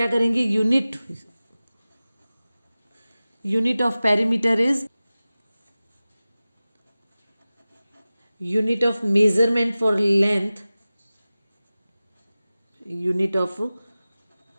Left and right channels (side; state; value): both; inverted; correlation -0.96